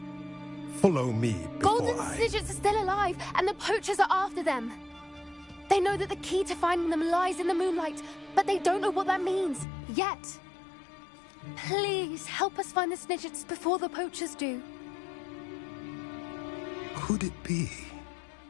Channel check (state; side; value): drops out; right; at 9.7 s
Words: follow me before Golden Snidgets are still alive, and the poachers are after them. They know that the key to finding them lies in the moonlight, but they don't know what that means, yet. Please, help us find the Snidgets before the poachers do. Could it be?